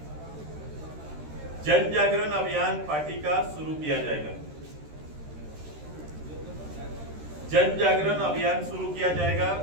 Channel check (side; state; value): left; late; 13 ms